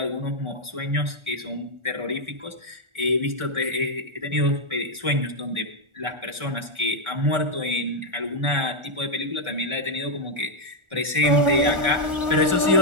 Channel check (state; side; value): late; left; 1.4 ms